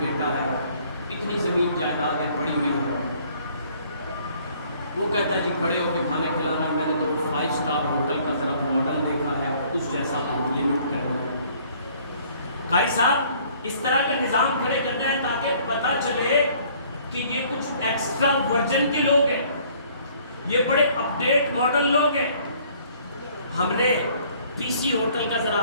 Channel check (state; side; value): inverted; both; correlation -0.58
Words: بیٹا ہے، اتنی زمین جائیداد ہے پڑی ہوئی ہے۔ وہ کہتا ہے جی کھڑے ہو کے کھانے کھلانا ہے، میں نے تو 5 اسٹار ہوٹل کا ذرا ماڈل دیکھا ہے، اس جیسا تو لمٹ کرنا ہے۔ قاری صاحب اس طرح کا نظام کھڑے کرنا ہے تاکہ پتہ چلے کہ یہ کچھ ایکسٹرا ورجن کے لوگ ہیں، یہ بڑے اپڈیٹ ماڈل لوگ ہیں۔ ہم نے پی سی ہوٹل کا ذرا